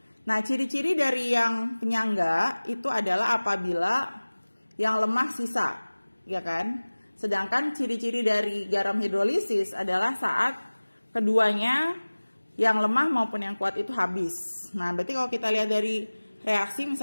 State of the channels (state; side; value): inverted; both; correlation -1.00